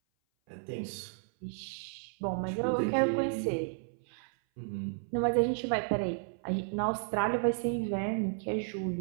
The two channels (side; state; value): left; silent; 56 dB below the other